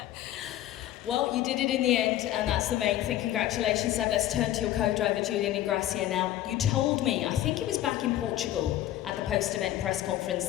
Well, you did it in the end, and that's the main thing. Congratulations, Seb. Let's turn to your co-driver, Julian Ingrassia, now. You told me, I think it was back in Portugal at the post-event press conference,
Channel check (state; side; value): quieter; right; 13.4 dB